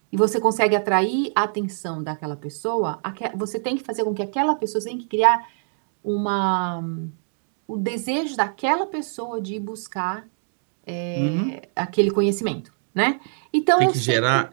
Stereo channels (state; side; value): silent; left; digital silence